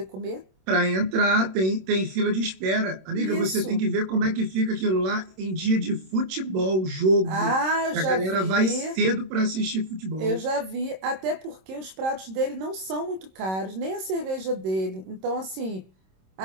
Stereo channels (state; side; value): late; left; 26 ms